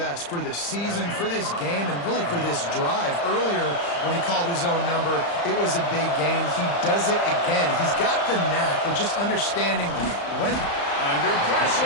for the season, for this game, and really for this drive. Earlier, when he called his own number, it was a big gain. He does it again. He's got the knack of just understanding when... Under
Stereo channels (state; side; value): late; right; 35 ms